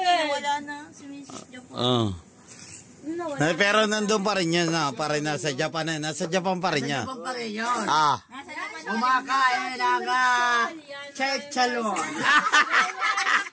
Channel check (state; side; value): identical; both; correlation 1.00